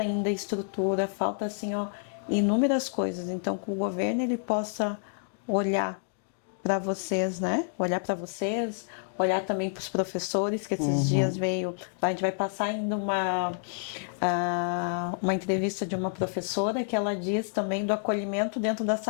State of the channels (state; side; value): silent; right; digital silence